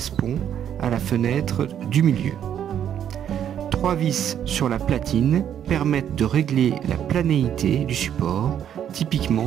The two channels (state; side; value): quieter; left; 9.6 dB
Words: à la fenêtre du milieu. 3 vis sur la platine permettent de régler la planéité du support,